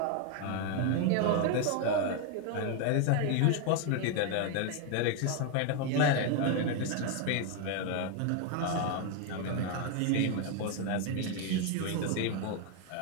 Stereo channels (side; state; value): both; different; correlation 0.01